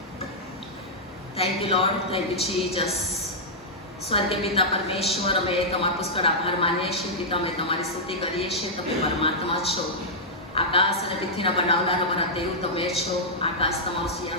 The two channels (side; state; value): both; normal; correlation -0.08